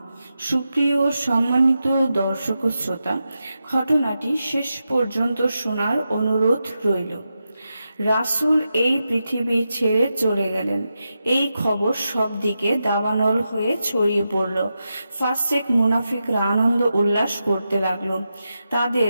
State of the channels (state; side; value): inverted; both; correlation -0.89